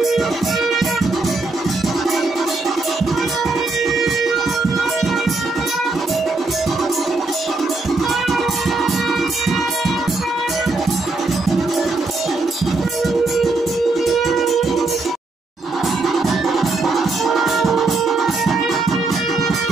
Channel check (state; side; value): quieter; left; 3.5 dB